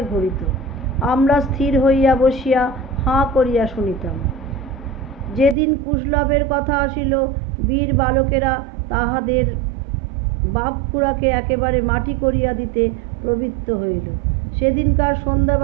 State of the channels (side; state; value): left; drops out; at 5.6 s